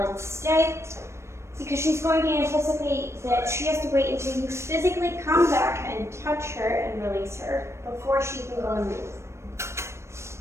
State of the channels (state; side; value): late; left; 0.13 ms